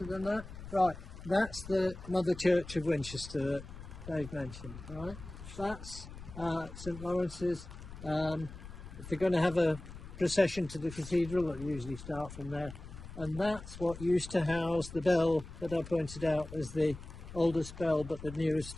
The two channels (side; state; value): left; noise; rumble, 13 dB below the sound